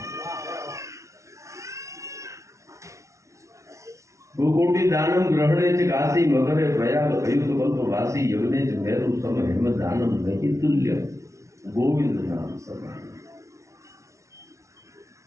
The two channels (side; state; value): left; late; 0.14 ms